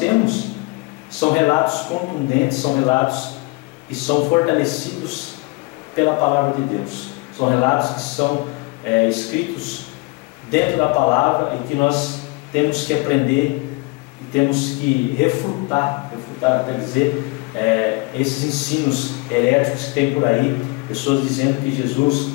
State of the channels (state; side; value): quieter; right; 26.7 dB